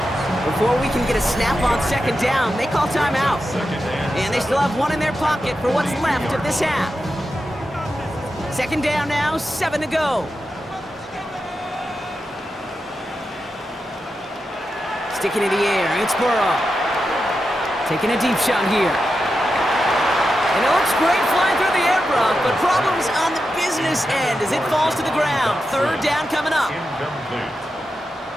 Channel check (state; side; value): normal; both; correlation 0.89